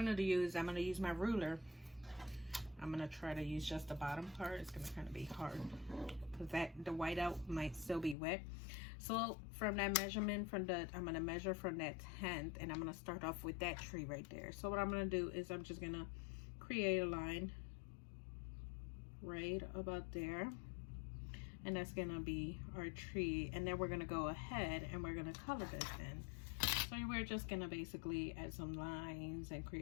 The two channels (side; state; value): right; drops out; at 8.2 s